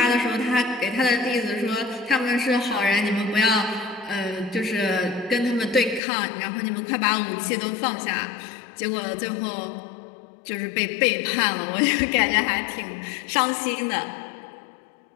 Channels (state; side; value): drops out; right; at 6.0 s